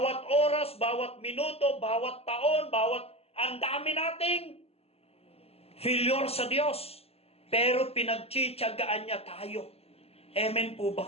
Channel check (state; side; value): late; right; 0.29 ms